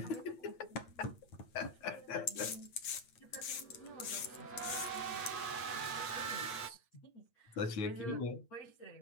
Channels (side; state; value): right; late; 8.7 ms